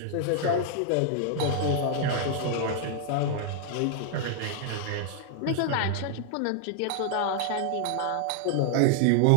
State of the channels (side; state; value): both; different; correlation 0.00